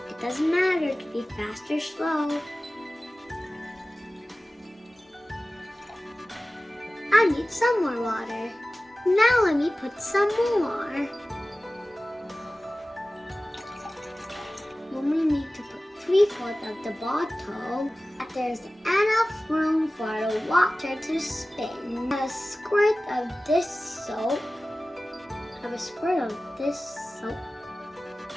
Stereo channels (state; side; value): normal; both; correlation 0.97